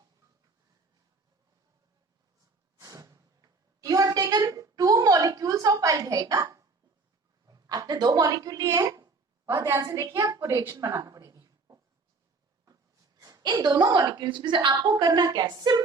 you have taken 2 molecules of aldehyde ना, आपने 2 मॉलिक्यूल लिए हैं, बहुत ध्यान से देखिए, आपको रिएक्शन बनाना पड़ेगी. इन दोनों मॉलिक्यूल्स में से आपको करना क्या है?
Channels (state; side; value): quieter; left; 4.0 dB